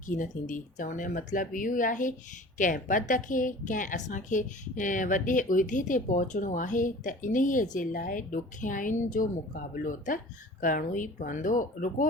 कीन थींदी। चवण जो मतिलबु इहो ई आहे, कंहिं पद खे, कंहिं असांखे वॾे उहिदे ते पहुचणो आहे त इन्हीअ जे लाइ ॾुखियाइयुनि जो मुक़ाबिलो त करिणो ई पवंदो। रुॻो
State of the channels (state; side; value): normal; both; correlation 0.43